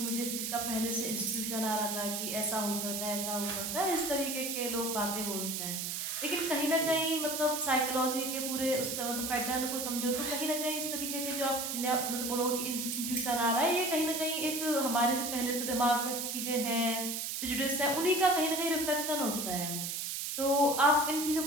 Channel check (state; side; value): noise; right; hiss, 3 dB below the sound